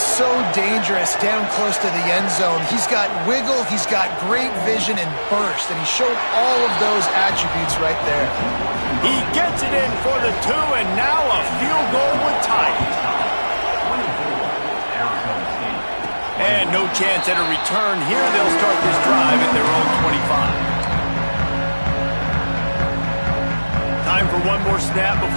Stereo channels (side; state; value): both; inverted; correlation -1.00